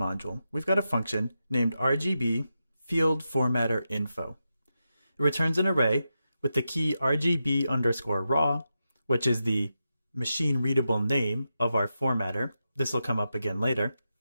we've got a function named RGB field formatter info. It returns an array with the key RGB_raw, which is the machine readable name of our formatter. This will come up again later.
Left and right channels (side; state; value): both; inverted; correlation -0.89